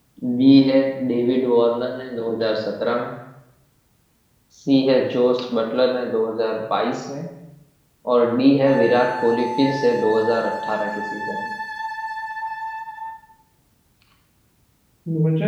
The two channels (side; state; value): both; identical; correlation 1.00